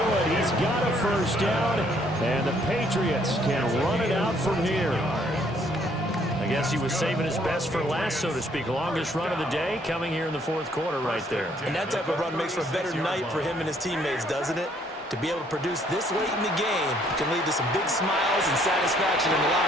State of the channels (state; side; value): normal; both; correlation 0.65